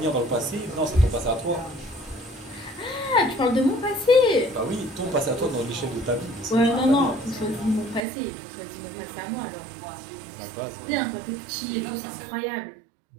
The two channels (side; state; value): left; drops out; at 8.0 s